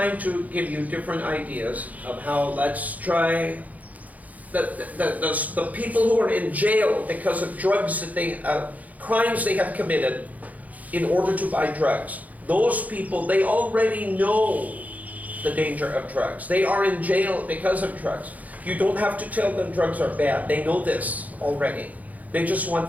to give you different ideas of how, let's try the people who are in jail because of drugs that crimes they have committed in order to buy drugs. Those people, they already know the danger of drugs. They are in jail because of drugs. You don't have to tell them drugs are bad. They know this already. They just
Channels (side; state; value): left; late; 0.076 ms